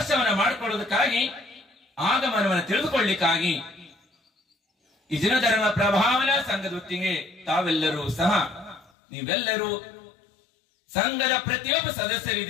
ಮಾಡಿಕೊಳ್ಳುವುದಕ್ಕಾಗಿ, ಆಗಮನವನ್ನು ತಿಳಿದುಕೊಳ್ಳಿಕ್ಕಾಗಿ ಈ ಜಿನಧರ್ಮ ಪ್ರಭಾವನಾ ಸಂಘದ ಹೊತ್ತಿಗೆ ತಾವೆಲ್ಲರೂ ಸಹ, ನೀವೆಲ್ಲರೂ ಸಂಘದ ಪ್ರತಿಯೊಬ್ಬ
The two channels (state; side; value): drops out; right; at 8.9 s